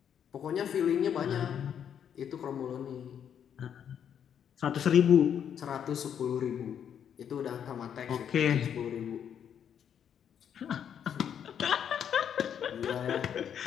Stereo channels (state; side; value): quieter; right; 8.6 dB